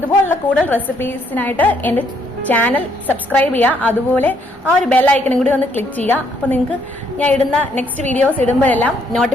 കൂടുതൽ റെസിപ്പീസിനായിട്ട് എന്റെ ചാനൽ സബ്സ്ക്രൈബ് ചെയ്യുക. അതുപോലെ ആ ഒരു ബെൽ ഐക്കണും കൂടി ഒന്ന് ക്ലിക്ക് ചെയ്യുക. അപ്പൊ നിങ്ങൾക്ക് ഞാൻ ഇടുന്ന നെക്സ്റ്റ് വീഡിയോസ് ഇടുമ്പോഴെല്ലാം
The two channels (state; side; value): normal; both; correlation 0.70